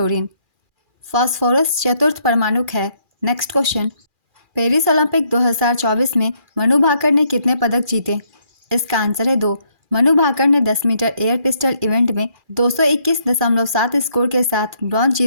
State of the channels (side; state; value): left; late; 2.4 ms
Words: फास्फोरस चतुर्थ परमाणुक है। नेक्स्ट क्वेश्चन, पेरिस ओलंपिक 2024 में मनु भाकर ने कितने पदक जीते? इसका आंसर है 2। मनु भाकर ने 10 मीटर एयर पिस्टल इवेंट में 221.7 स्कोर के साथ ब्रॉन्ज